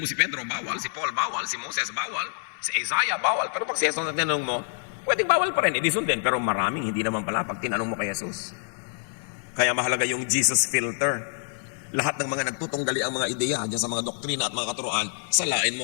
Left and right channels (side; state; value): right; silent; digital silence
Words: mo si Pedro, bawal. Si Paul, bawal. Si Moses, bawal. Si Isaiah, bawal. Pero pag si Jesus ang tinanong mo, pwedeng bawal pa rin. Edi sundin. Pero maraming hindi naman pala pag tinanong mo kay Jesus. Kaya mahalaga yung Jesus filter. Lahat ng mga nagtutunggali ang mga ideya dyan sa mga doktrina at mga katuruan, salain